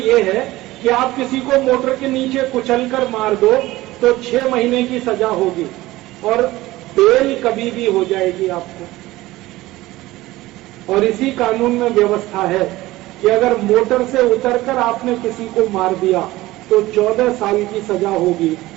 है कि आप किसी को मोटर के नीचे कुचलकर मार दो तो 6 महीने की सजा होगी, और बेल कभी भी हो जाएगी आपको। और इसी कानून में व्यवस्था है कि अगर मोटर से उतरकर आपने किसी को मार दिया तो 14 साल की सजा होगी,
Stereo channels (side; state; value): left; quieter; 17.9 dB